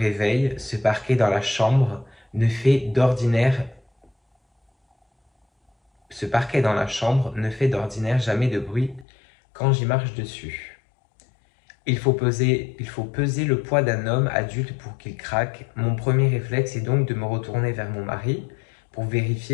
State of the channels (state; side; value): drops out; right; at 9.1 s